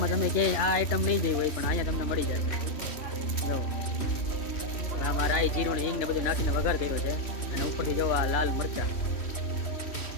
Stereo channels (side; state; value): right; late; 3.1 ms